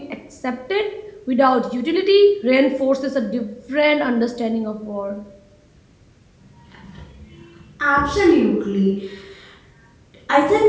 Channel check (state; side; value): identical; both; correlation 1.00